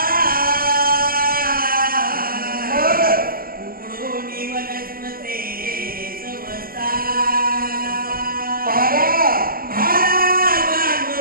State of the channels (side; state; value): left; late; 0.42 ms